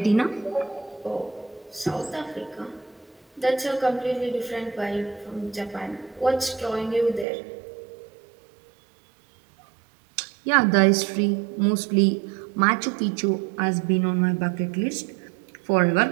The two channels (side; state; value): left; drops out; at 7.2 s